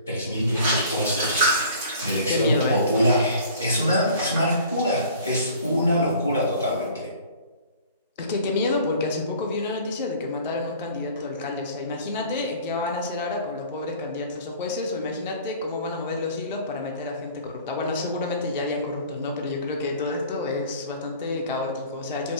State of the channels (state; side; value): inverted; both; correlation -0.48